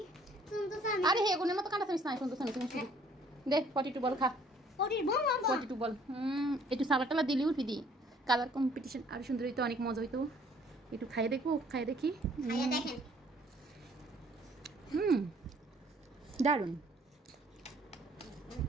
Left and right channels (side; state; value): both; normal; correlation 0.60